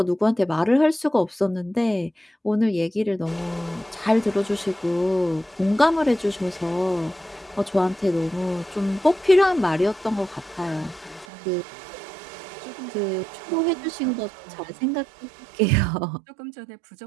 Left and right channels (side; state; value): left; drops out; at 11.2 s